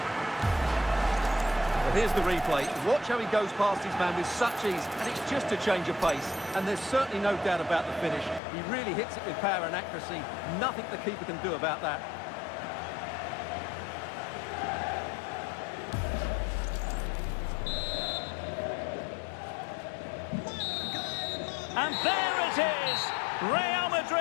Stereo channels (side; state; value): right; drops out; at 8.4 s